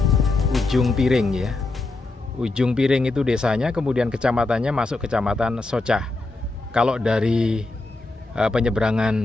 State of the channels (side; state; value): right; quieter; 3.2 dB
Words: Ujung Piring ya. Ujung Piring itu desanya, kemudian kecamatannya masuk kecamatan Socah. Kalau dari